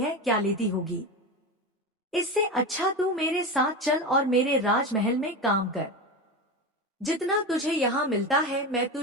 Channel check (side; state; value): both; normal; correlation 0.21